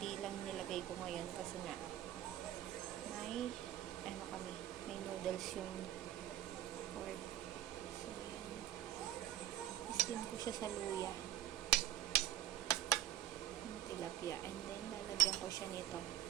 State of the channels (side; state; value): left; quieter; 12.2 dB